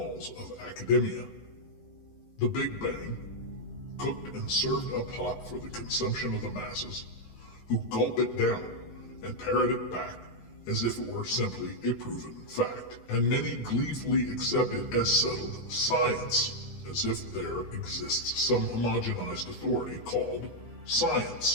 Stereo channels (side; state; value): right; late; 18 ms